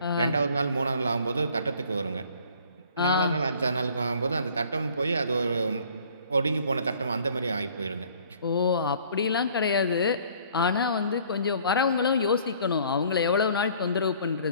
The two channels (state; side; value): inverted; both; correlation -0.55